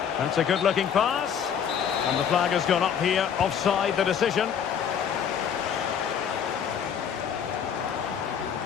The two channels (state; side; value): quieter; right; 7.9 dB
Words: That's a good-looking pass. And the flag has gone up here, offside the decision.